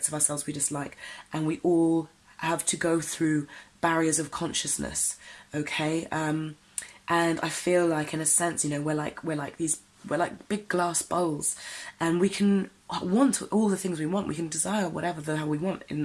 of ourselves we dislike, and we all have to go through barriers of consciousness, okay? And I feel like, in a sense, we're like big glass bowls, and we can want all the things we want. We can desire whatever the hell we want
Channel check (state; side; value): identical; both; correlation 1.00